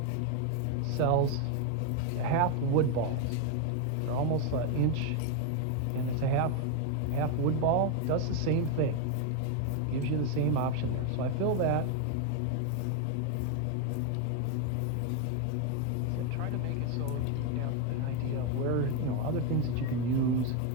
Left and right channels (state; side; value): different; both; correlation 0.01